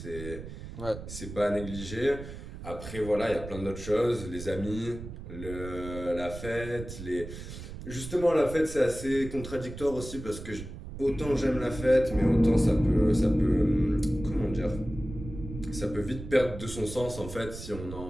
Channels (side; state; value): right; noise; rumble, 11 dB below the sound